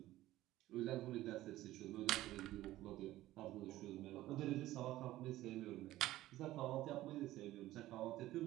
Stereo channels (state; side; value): quieter; left; 15.6 dB